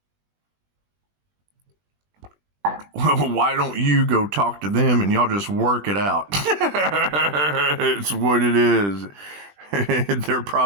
Why don't you go talk to them and y'all just work it out? It's what it is. They're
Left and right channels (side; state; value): left; late; 20 ms